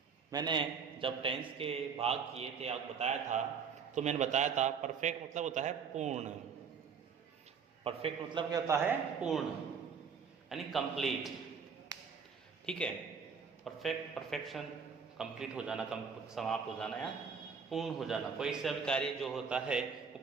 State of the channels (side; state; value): left; quieter; 6.1 dB